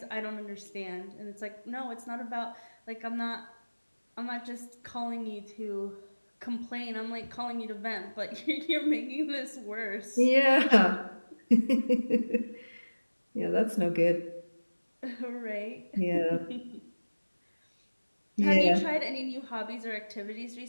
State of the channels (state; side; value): inverted; both; correlation -1.00